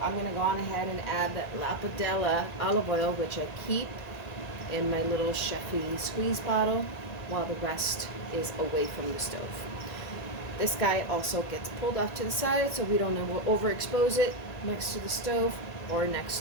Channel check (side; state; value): right; late; 1.9 ms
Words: I'm going to go on ahead and add that Lapidella olive oil, which I keep in my little Chefy squeeze bottle, while the rest is away from the stove. This guy also gets pulled off to the side so we don't overexpose it next to the stove or